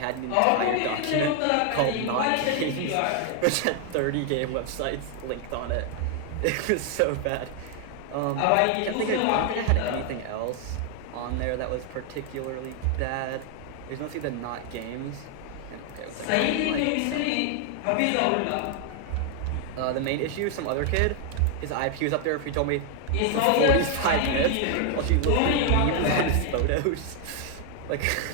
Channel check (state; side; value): different; both; correlation 0.00